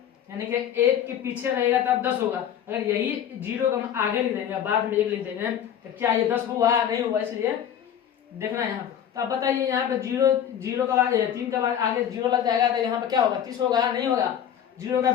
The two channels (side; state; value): right; quieter; 9.5 dB